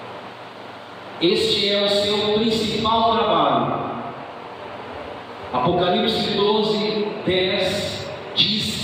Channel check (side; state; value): both; identical; correlation 1.00